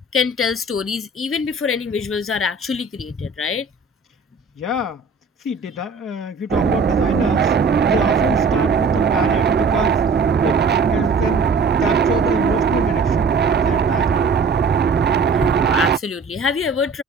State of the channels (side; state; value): left; quieter; 4.0 dB